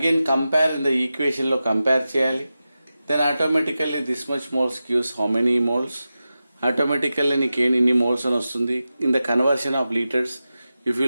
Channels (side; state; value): both; inverted; correlation -0.93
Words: compare in the equation లో కంపేర్ చేయాలి. Then automatically this much moles gives how many moles. Automatically నీకు ఇన్ని moles అని వస్తుంది. In the conversion of litres if you